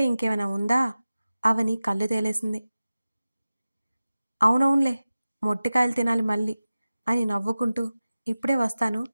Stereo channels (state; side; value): inverted; both; correlation -0.96